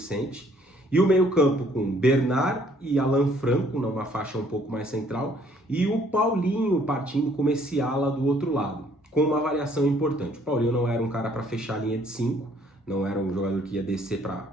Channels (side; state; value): both; normal; correlation 0.62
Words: E o meio-campo com Bernard e Alan Franco, numa faixa um pouco mais central, e o Paulinho partindo como esse ala do outro lado, com uma variação importante. O Paulinho não era um cara para fechar a linha de 5, não era um jogador que ia descer